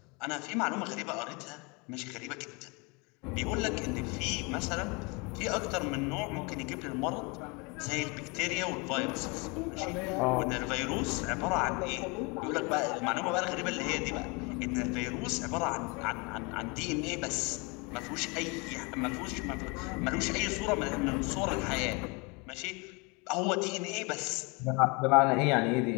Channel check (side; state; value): right; quieter; 29.3 dB